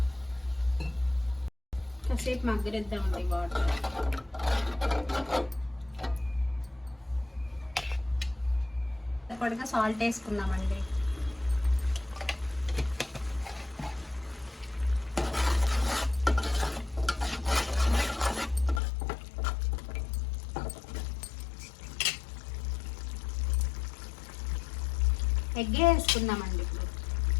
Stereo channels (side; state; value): right; drops out; at 18.8 s